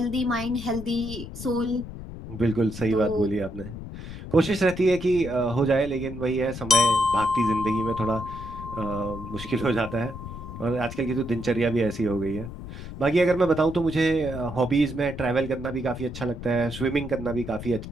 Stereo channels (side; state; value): left; noise; rumble, 10 dB below the sound